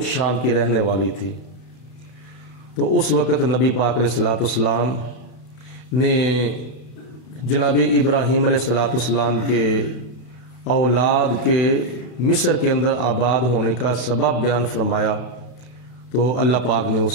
شام کی رہنے والی تھی؟ تو اس وقت نبی پاک علیہ الصلوۃ والسلام نے جناب ابراہیم علیہ الصلوۃ والسلام کے اولاد کے مصر کے اندر آباد ہونے کا سبب بیان فرمایا تو اللہ پاک نے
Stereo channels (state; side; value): late; right; 32 ms